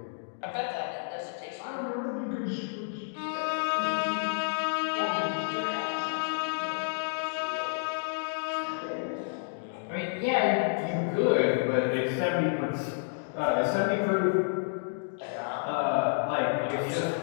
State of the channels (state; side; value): silent; right; digital silence